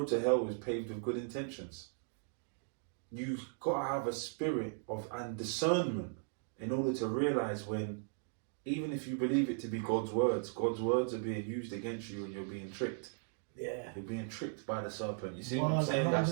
to hell is paved with good intentions. You've got to have a spirit of and discernment in order to realize when, even if you believe it to be God's words are being used against you and you're being tricked. Yeah. You're being tricked by the serpent. You see what I'm saying?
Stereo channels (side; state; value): left; silent; digital silence